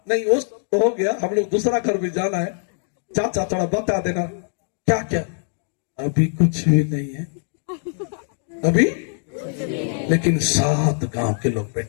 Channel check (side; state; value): right; silent; 64 dB below the other